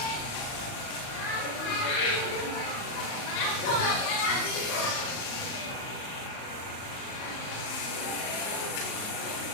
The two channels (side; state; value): right; late; 38 ms